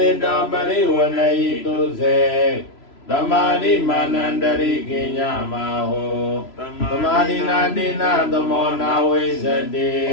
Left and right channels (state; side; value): late; right; 3.0 ms